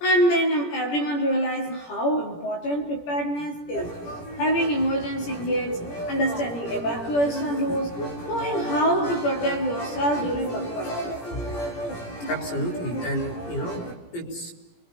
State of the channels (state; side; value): late; right; 17 ms